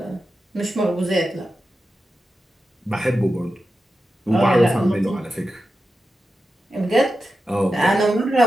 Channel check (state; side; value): normal; both; correlation 0.91